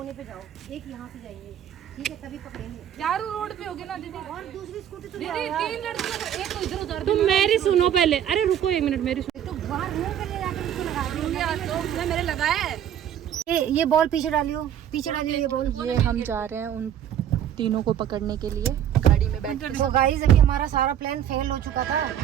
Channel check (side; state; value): left; quieter; 10.1 dB